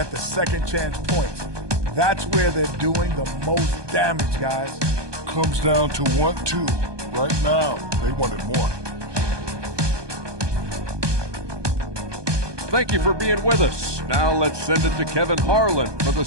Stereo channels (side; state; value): left; late; 1.2 ms